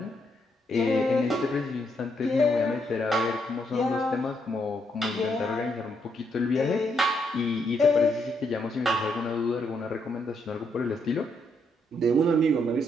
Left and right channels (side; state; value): both; normal; correlation 0.76